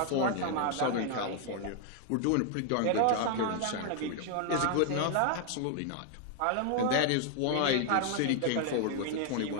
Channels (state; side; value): different; both; correlation 0.00